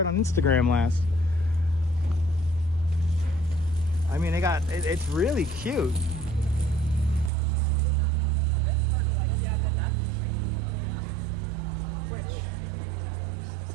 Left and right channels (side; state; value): left; drops out; at 7.3 s